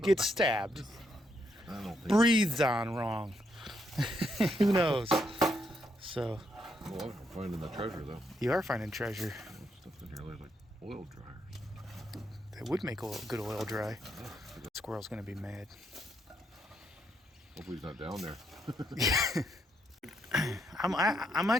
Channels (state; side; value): normal; both; correlation 0.76